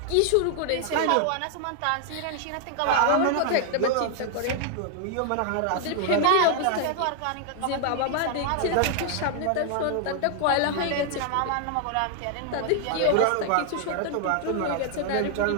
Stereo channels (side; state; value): both; different; correlation 0.00